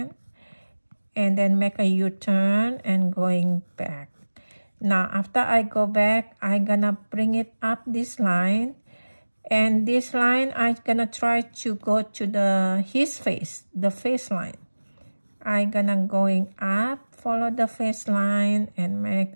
and then make a U-turn and going back. Now after I go back, I'm gonna bring it up this line, and this line I'm gonna try to go to his face, the face line. I'm gonna going up, follow the face line, and make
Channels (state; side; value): inverted; both; correlation -1.00